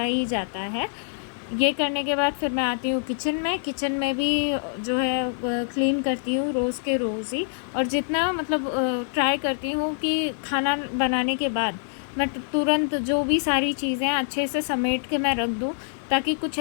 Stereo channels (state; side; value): silent; right; 62 dB below the other